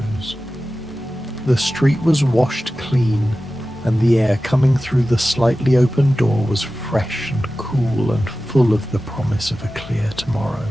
The street was washed clean, and the air coming through the slightly open door was fresh and cool and full of the promise of a clear tomorrow.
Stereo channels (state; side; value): normal; both; correlation 0.95